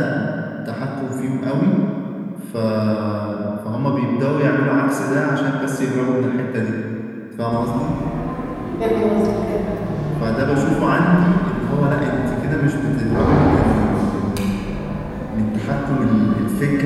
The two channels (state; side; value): identical; both; correlation 1.00